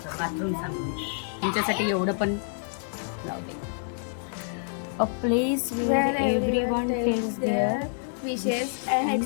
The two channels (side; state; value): right; silent; digital silence